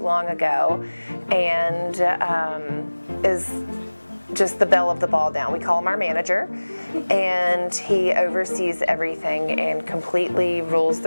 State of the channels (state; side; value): inverted; both; correlation -1.00